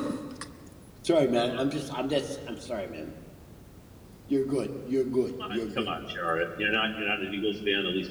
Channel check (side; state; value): both; identical; correlation 1.00